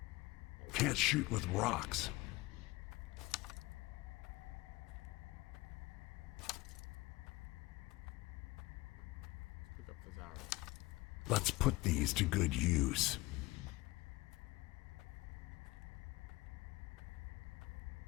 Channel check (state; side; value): quieter; right; 21.3 dB